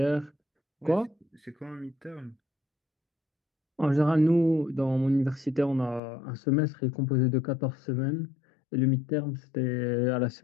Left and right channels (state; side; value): drops out; right; at 6.0 s